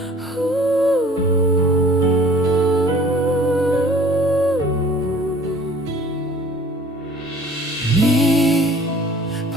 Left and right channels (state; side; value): normal; both; correlation 0.51